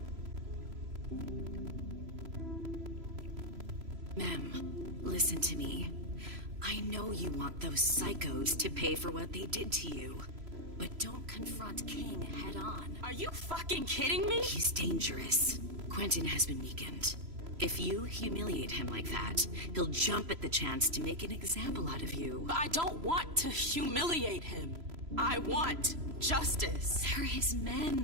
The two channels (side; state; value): left; late; 3.0 ms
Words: Mem, listen to me. I know you want those psychos to pay for what they did to you. But don't confront King head on. Are you fucking kidding me? He's dangerous. Quentin has been weakened. If you humiliate him like that, he'll jump at the chance to make an example out of you. But I don't want to humiliate him. I want justice. They're his